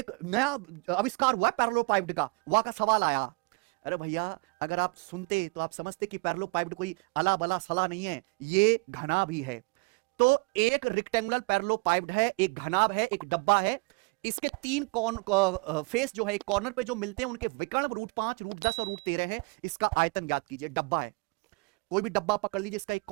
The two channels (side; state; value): left; quieter; 28.6 dB